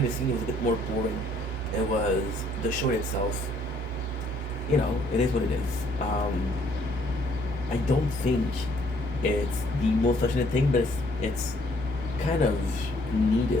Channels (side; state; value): both; normal; correlation 0.64